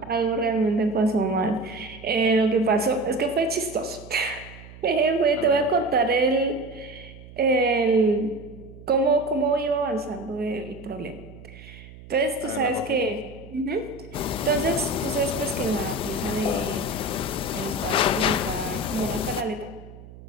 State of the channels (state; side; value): noise; right; hum, 18 dB below the sound